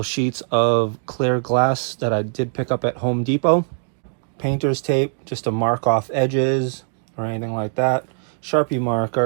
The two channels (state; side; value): silent; left; digital silence